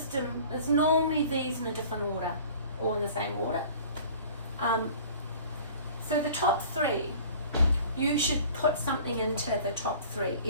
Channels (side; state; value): both; inverted; correlation -0.46